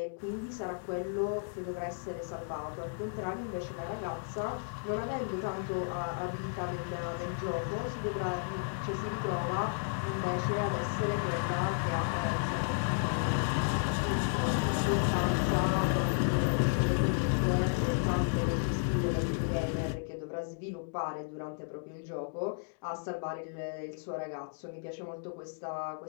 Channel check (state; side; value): silent; right; digital silence